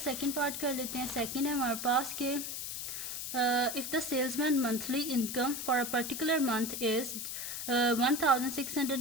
पार्ट कर लेते हैं। सेकंड है हमारे पास के if the salesman monthly income for a particular month is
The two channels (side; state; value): left; noise; hiss, 5 dB below the sound